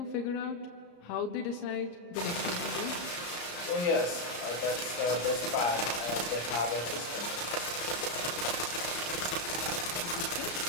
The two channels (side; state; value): right; late; 34 ms